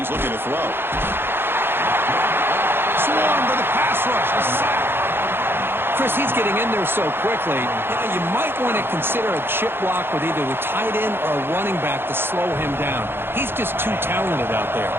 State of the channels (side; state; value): left; late; 0.11 ms